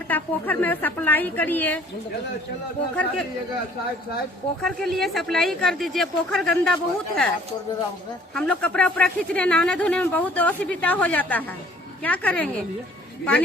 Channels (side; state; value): both; normal; correlation 0.55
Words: पोखर में सप्लाई करिए, पोखर के लिए सप्लाई कर दीजिए। पोखर गंदा बहुत है, हम लोग कपड़ा उपड़ा खींचने नहाने धोने में बहुत असुविधा हो जाता है। क्या करेंगे?